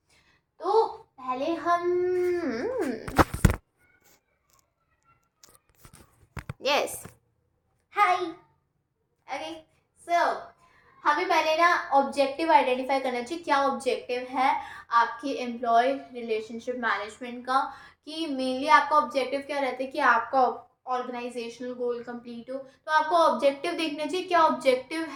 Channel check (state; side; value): identical; both; correlation 1.00